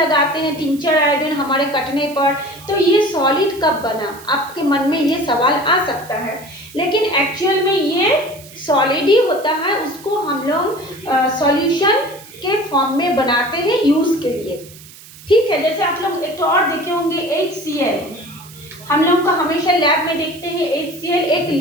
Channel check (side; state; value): right; noise; hiss, 20 dB below the sound